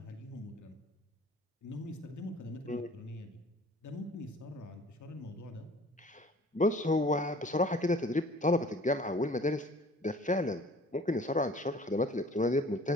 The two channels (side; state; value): both; normal; correlation 0.50